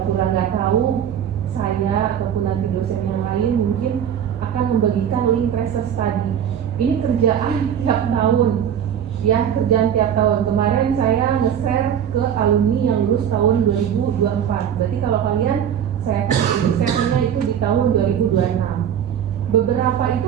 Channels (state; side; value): quieter; left; 9.0 dB